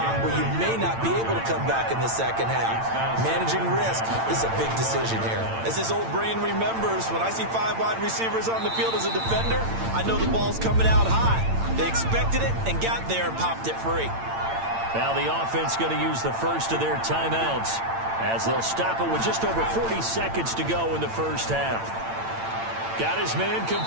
where you may not be able to come back in the second half. Managing risk is a big decision here. As this old brain remembers, when I see 5 wide receivers on the field as a defender, I know the ball's coming out high. They expected it and got there and popped it free. Now the offense going to use the first of their timeouts as they'll stop it with just over 40 seconds to go in the first half. Got his man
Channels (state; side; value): late; left; 8.9 ms